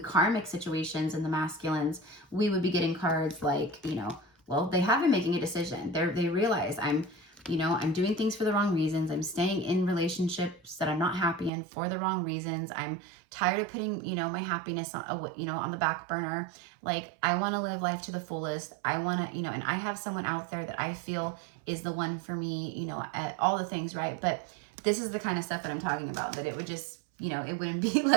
karmic situations and the masculines, we would be getting cards like, you know, well, they have been making a decision. They realize I'm doing things for the wrong reasons. I'm staying in relationships that I'm not happy in for the wrong reasons. I'm tired of putting, you know, my happiness on, you know, on the back burner. Like, I want to live life to the fullest. I want to, you know, and I have someone out there that I feel is the one for me, you know, at all the things, right? But this is the kind of stuff that I'm talking about, that it would just, you know, it wouldn't be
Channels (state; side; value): drops out; left; at 11.5 s